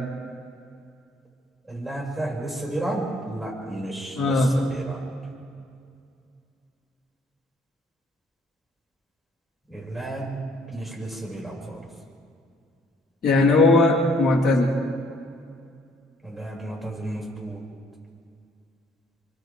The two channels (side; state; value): both; normal; correlation 0.63